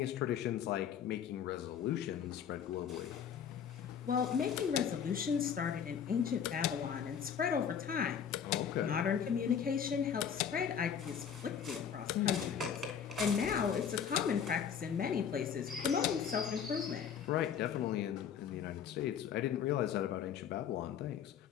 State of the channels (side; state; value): right; quieter; 8.0 dB